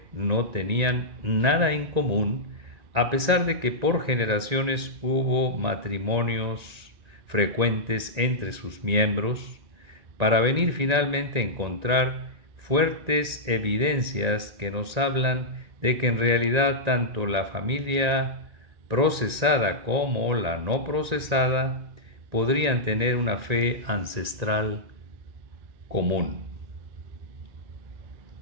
no tenían nada en común, a pesar de que por generaciones hubo matrimonios frecuentes entre sus miembros, para venir finalmente a encontrar fuertes evidencias que nos hablan de que en realidad tanto la familia procesada como la no procesada podrían tener una fe ancestral común.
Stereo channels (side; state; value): left; late; 1.9 ms